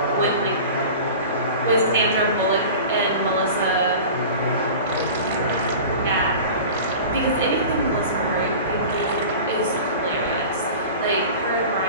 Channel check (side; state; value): both; inverted; correlation -0.37